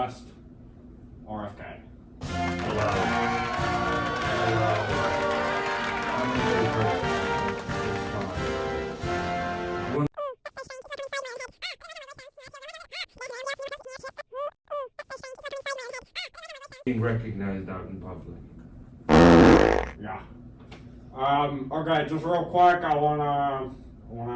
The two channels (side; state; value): both; identical; correlation 1.00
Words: RFK. Hello. I'm a good person. Being recognized out in public. Yeah. Okay, just real quick, I wanna